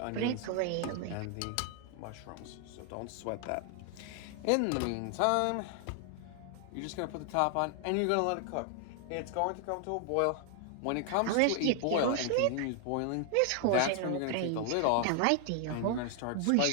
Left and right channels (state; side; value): different; both; correlation 0.00